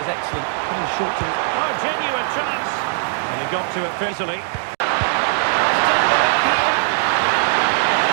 excellent, coming short to his... Oh, genuine chance. And he got to it easily. Must take the lead here.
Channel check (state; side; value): silent; left; digital silence